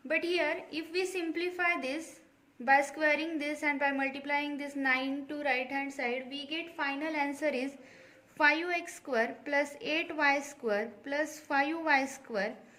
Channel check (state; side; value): identical; both; correlation 1.00